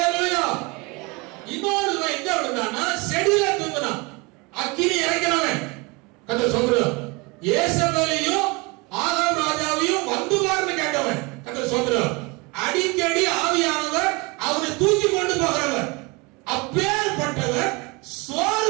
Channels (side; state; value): left; quieter; 26.9 dB